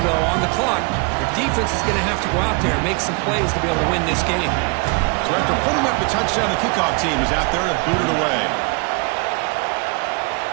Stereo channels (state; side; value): quieter; left; 31.8 dB